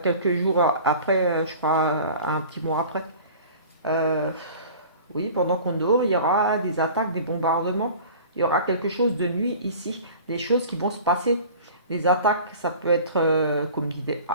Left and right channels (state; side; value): inverted; both; correlation -0.42